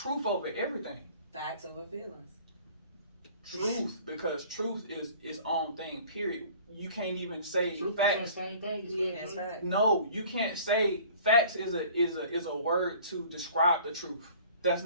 over everything. Facts over feelings. Truth, because truth is its own thing. Period. You can't even say Truth facts. is the same thing. It's facts. No, you can't say facts is a word to describe the truth. That's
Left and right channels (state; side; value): inverted; both; correlation -0.48